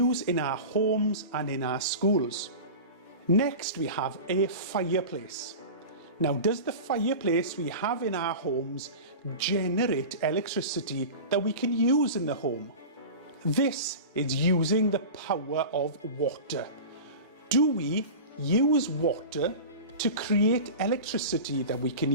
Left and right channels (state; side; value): inverted; both; correlation -0.31